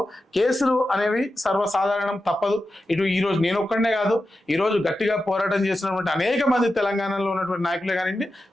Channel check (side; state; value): both; normal; correlation 0.91